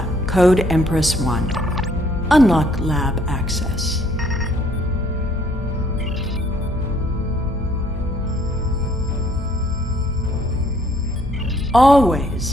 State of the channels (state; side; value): normal; both; correlation 0.64